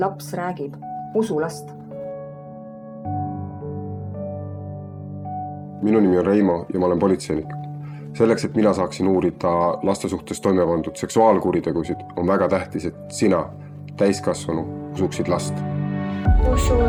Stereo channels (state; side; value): identical; both; correlation 1.00